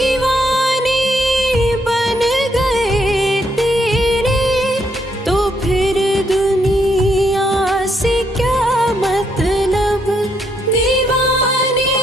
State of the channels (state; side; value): normal; both; correlation 0.74